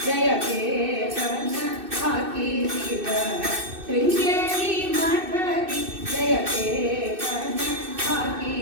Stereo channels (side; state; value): left; late; 2.6 ms